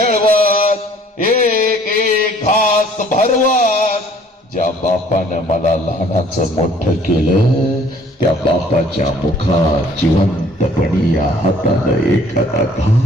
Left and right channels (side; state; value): both; normal; correlation 0.57